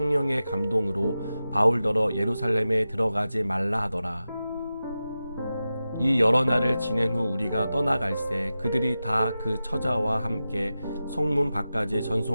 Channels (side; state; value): both; inverted; correlation -0.93